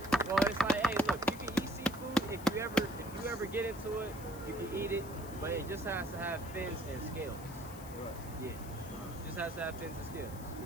Well, it's like, hey, look, you can eat seafood if you ever get into it, you can eat it, but it just has to have fins and scales. Yeah. Just has to have fins and scales. You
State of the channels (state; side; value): noise; left; hiss, 16 dB below the sound